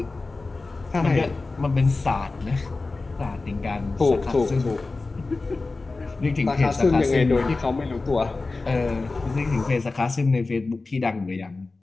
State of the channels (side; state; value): right; quieter; 3.6 dB